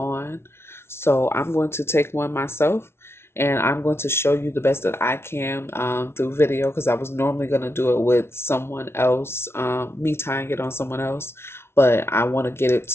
So I'm going to take one myself and I'm going to show you the best that I can through video because I was normally going to do it with someone else, me tying it on someone else, but I want to get it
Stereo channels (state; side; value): late; right; 0.12 ms